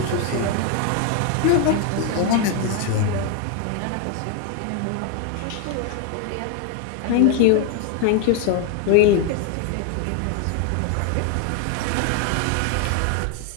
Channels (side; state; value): both; different; correlation 0.01